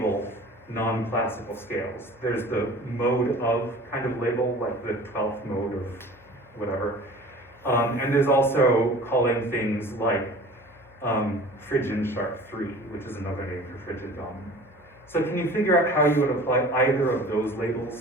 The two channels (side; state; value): left; noise; hum, 27 dB below the sound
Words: non-classical scales. There's the mode of kind of label, like the 12th mode of whatever. And there's also calling things like Phrygian sharp 3, which is another name for Phrygian dominant. So can you figure out how you would apply either of those